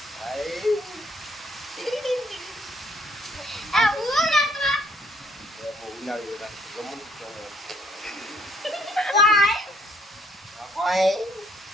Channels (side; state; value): both; normal; correlation 0.66